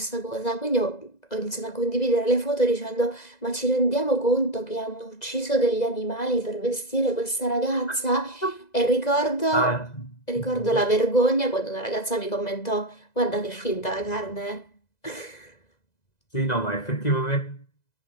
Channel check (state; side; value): late; right; 2.0 ms